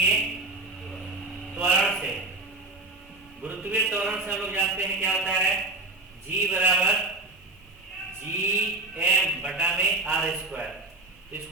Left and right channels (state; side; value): quieter; left; 3.0 dB